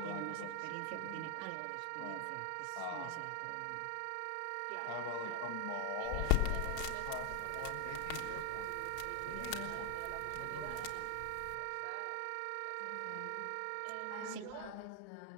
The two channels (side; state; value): both; different; correlation 0.00